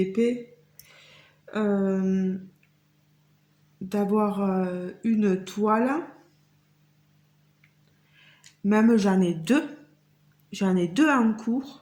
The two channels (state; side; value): identical; both; correlation 1.00